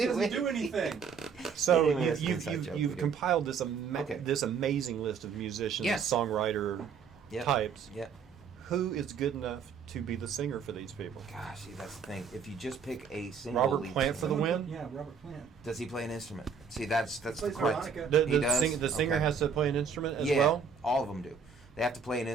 doesn't it. do anything. So Anyway, that's an you've inside joke you've we do. compiled this Okay. this amazing list of musicians, Yes. songwriter Yep. types. Yeah. Who is good enough to be the singer for these people? Gosh, see, that's the thing. If you just pick a single Robert lead Plant for the singer- win? Yeah, Robert Plant. Does he play an instrument? See, that's the Plays question. harmonica. He does? The singer Okay. has to play an instrument as Yeah, well. all of them do. They have to play an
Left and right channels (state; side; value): quieter; left; 6.0 dB